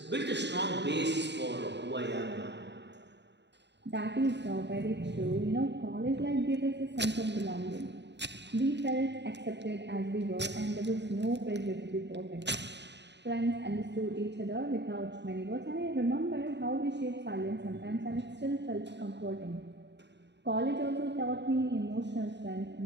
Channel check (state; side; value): late; left; 0.51 ms